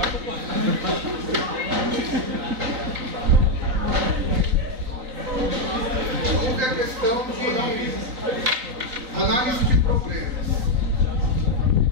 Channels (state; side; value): late; left; 3.9 ms